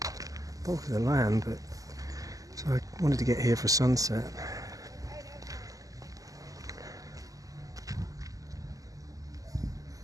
land, but so I wanted to get here for sunset.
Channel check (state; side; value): late; left; 0.17 ms